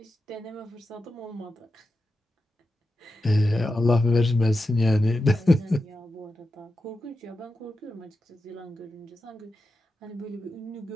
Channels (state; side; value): normal; both; correlation 0.90